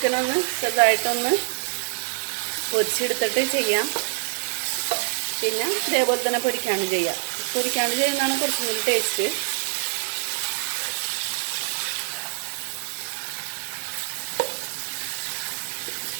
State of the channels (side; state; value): left; silent; 62 dB below the other